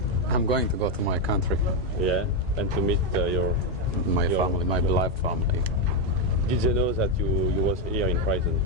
I'm going to go to my country. Yeah, and to meet my family, my beloved family. Did they know that you was here in prison?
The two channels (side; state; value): both; normal; correlation 0.04